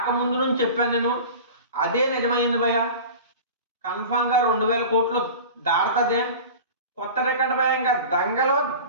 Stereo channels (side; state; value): both; inverted; correlation -0.36